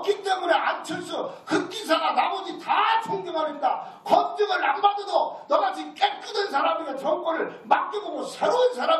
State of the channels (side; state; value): both; identical; correlation 1.00